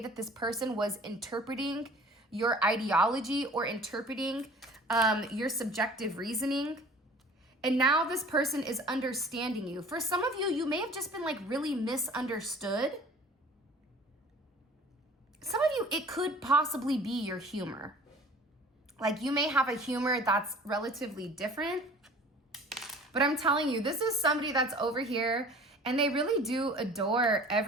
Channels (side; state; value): both; normal; correlation 0.46